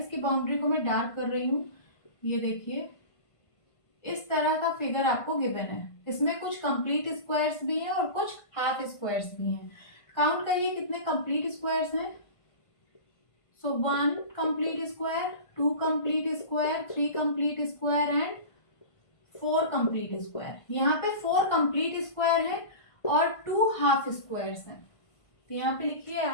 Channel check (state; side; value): late; right; 1.5 ms